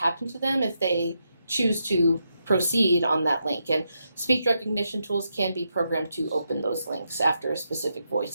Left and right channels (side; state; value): both; inverted; correlation -0.83